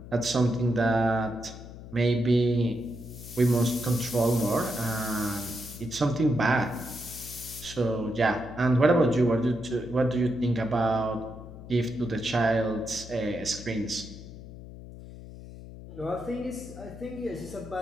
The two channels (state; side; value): noise; left; hum, 14 dB below the sound